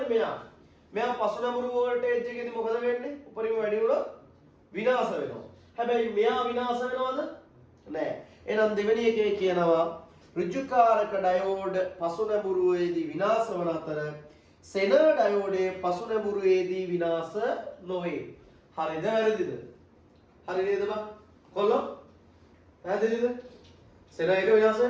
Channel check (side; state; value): both; identical; correlation 1.00